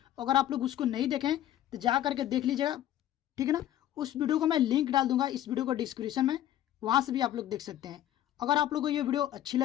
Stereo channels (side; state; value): right; quieter; 12.4 dB